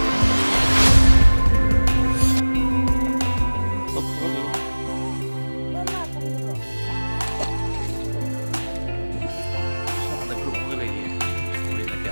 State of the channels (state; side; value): inverted; both; correlation -1.00